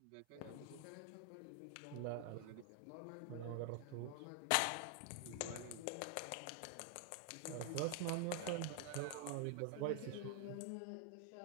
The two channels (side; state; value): both; different; correlation 0.00